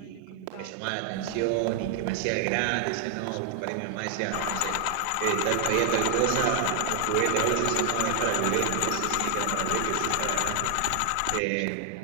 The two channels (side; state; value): both; different; correlation 0.00